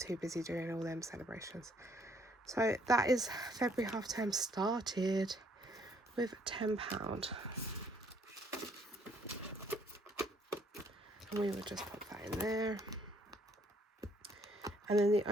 busy doing all them celebrations. So that is February half term started with £10. And we would just pop that in there. And then the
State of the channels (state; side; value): normal; both; correlation 0.65